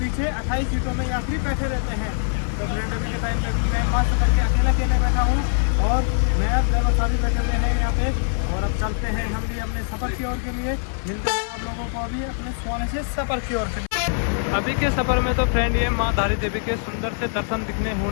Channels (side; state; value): right; silent; 56 dB below the other